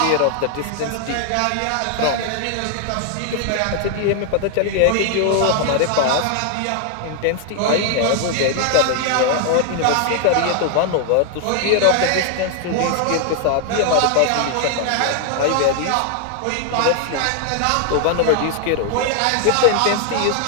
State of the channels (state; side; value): different; both; correlation 0.00